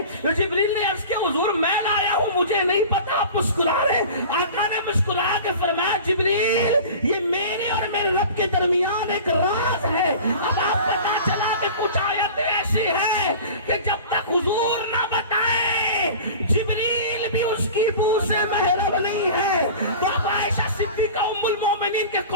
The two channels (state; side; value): inverted; both; correlation -0.38